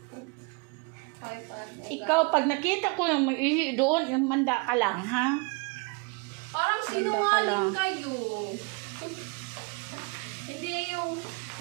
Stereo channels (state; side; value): quieter; left; 30.9 dB